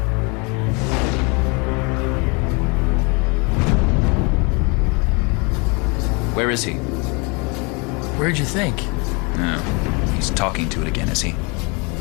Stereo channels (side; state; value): right; quieter; 30.8 dB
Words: Where is he? Where'd you think? No, he's talking to it again, is he?